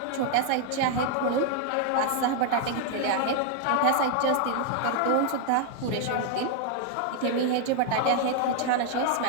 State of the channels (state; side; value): different; both; correlation 0.00